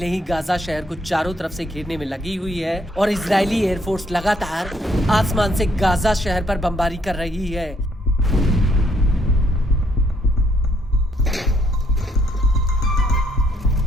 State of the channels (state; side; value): normal; both; correlation 0.69